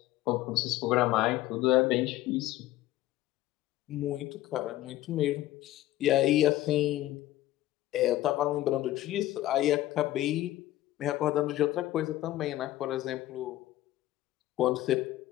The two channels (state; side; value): quieter; right; 15.3 dB